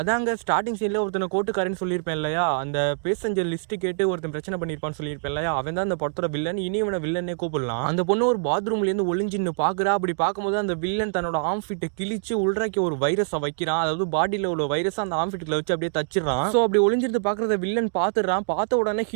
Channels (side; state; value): left; silent; digital silence